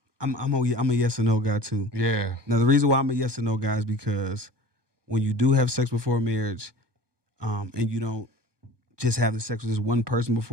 I'm a yes and no guy too. Yeah. Now the reason why I'm a yes and no guy is because when you do have sex before marriage, and you don't just have the sex with this one person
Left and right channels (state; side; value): late; left; 1.2 ms